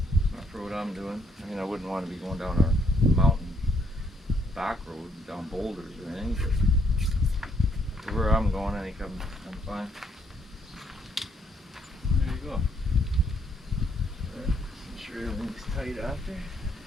for what I'm doing. I mean, I wouldn't want to be going down a mountain back road, down boulders or anything, but for where I'm going, I think I'm fine. There you go. Make sure everything's tight after.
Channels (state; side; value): normal; both; correlation 0.70